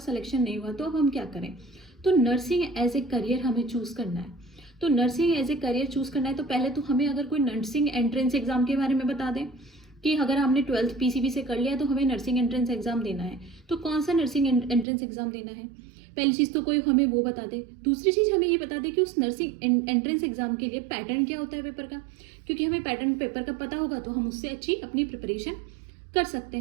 नहीं हुआ, तो अब हम क्या करें। तो नर्सिंग एज ए करियर हमें चूज़ करना है। तो nursing as a career choose करना है तो पहले तो हमें अगर कोई नर्सिंग एंट्रेंस एग्जाम के बारे में बता दें कि अगर हमने 12th PCB से कर लिया तो हमें नर्सिंग एंट्रेंस एग्जाम देना है, तो कौन सा नर्सिंग एंट्रेंस एग्जाम देना है। पहली चीज़ तो कोई हमें वो बता दे। दूसरी चीज़ हमें ये बता दे कि उस नर्सिंग एंट्रेंस एग्जाम के लिए पैटर्न क्या होता है पेपर का, क्योंकि हमें पैटर्न पेपर का पता होगा तो हम उससे अच्छी अपनी प्रिपरेशन कर सकते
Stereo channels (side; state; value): left; drops out; at 14.9 s